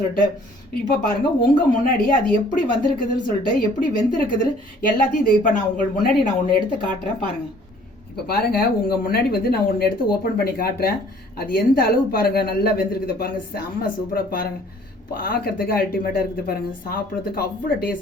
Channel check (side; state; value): both; normal; correlation 0.56